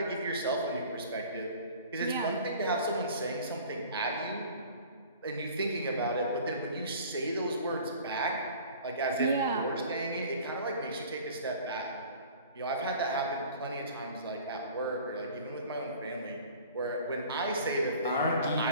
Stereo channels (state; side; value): inverted; both; correlation -0.45